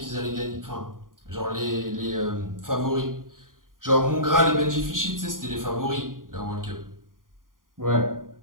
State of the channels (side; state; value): left; late; 0.90 ms